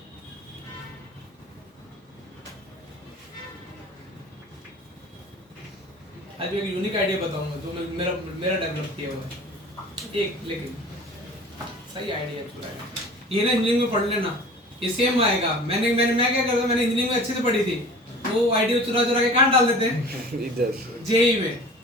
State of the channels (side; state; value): both; normal; correlation 0.42